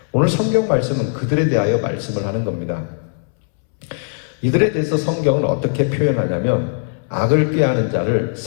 오늘 성경 말씀은 그들에 대하여 말씀을 하는 겁니다. 이들에 대해서 성경은 어떻게 표현하냐면 악을 꾀하는 자를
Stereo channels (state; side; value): silent; right; 67 dB below the other